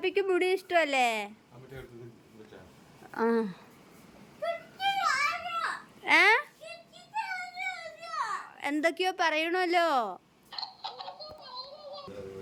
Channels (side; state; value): both; identical; correlation 1.00